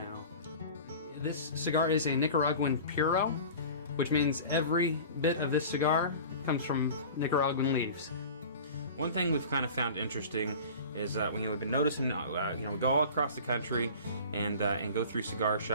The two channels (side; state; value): both; inverted; correlation -0.39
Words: This cigar is a Nicaraguan Puro, which means every bit of this cigar comes from Nicaraguan leaves. One thing we've kind of found interesting is when we've been noticing, we go all across the country and go through cigar